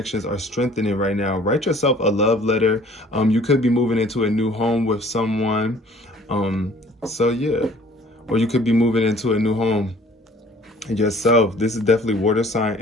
are strengthening right now. Write yourself a love letter. You could be moving into a new home with someone. Or you could be moving into a new home yourself. This is definitely water sign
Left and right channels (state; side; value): normal; both; correlation 0.53